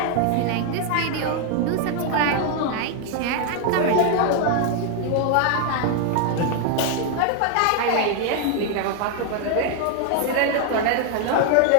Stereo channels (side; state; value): both; different; correlation 0.00